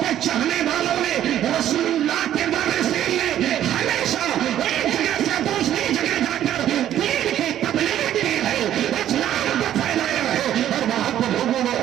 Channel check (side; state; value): left; quieter; 11.5 dB